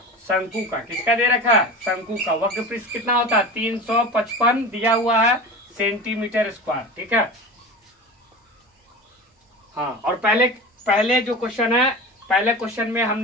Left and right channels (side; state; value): both; normal; correlation 0.31